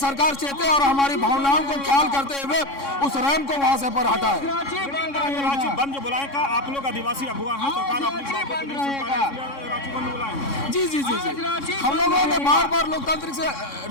चेते और हमारी भावनाओं को ख्याल करते हुए उस रैम को वहाँ से पर हटाए। रांची बंद जो बुलाए का आप लोग आदिवासी अगुआ हैं, सरकार अपनी बातों को नहीं सुन पा रही है, रांची बंद बुलाए। जी जी जी जी, हम लोगों ने बार बार लोकतांत्रिक से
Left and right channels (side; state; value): right; late; 3.6 ms